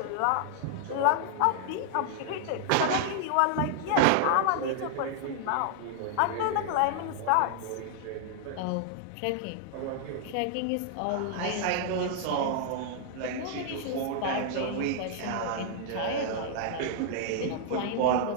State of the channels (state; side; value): different; both; correlation -0.01